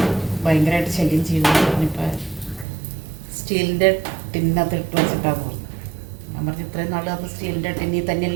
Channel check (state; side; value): drops out; left; at 2.7 s